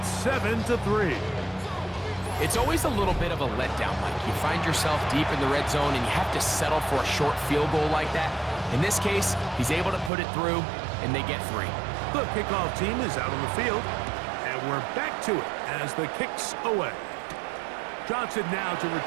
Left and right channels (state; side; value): drops out; left; at 10.1 s